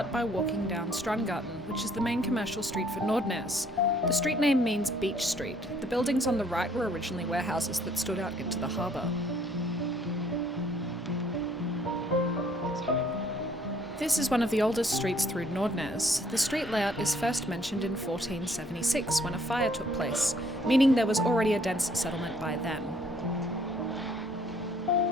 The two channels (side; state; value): both; normal; correlation 0.62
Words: by walking down Strandgaten, which is the main commercial street for Nordnes. The street name means beach street. The buildings on the right were originally warehouses that stood out into the harbour. This is one of the oldest streets through Nordnes. The street layout is first mentioned in 1476 when a fire took place, meaning there was already a dense settlement by then.